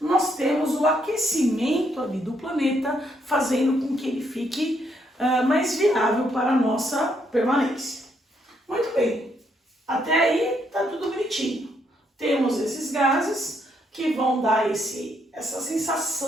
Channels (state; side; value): normal; both; correlation 0.74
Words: temos o aquecimento ali do planeta, fazendo com que ele fique mais viável para a nossa permanência. Muito bem, até aí está tudo bonitinho. Temos esses gases que vão dar essa